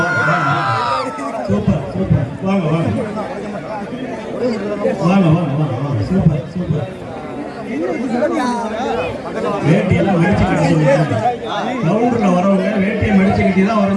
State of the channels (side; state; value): both; identical; correlation 1.00